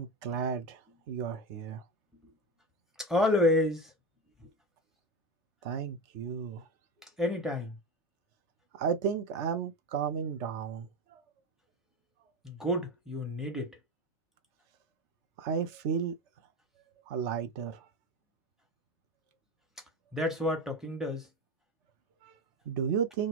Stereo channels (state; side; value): normal; both; correlation 0.20